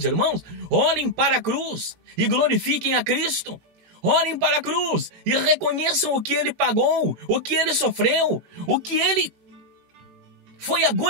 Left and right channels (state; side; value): late; left; 18 ms